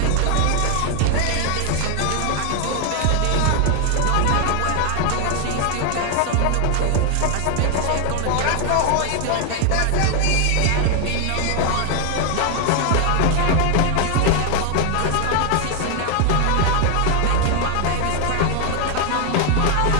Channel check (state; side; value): different; both; correlation 0.00